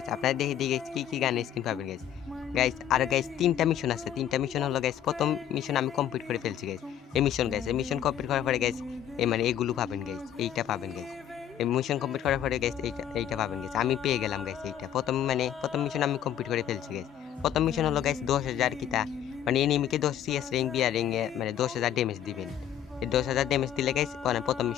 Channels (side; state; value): right; quieter; 10.3 dB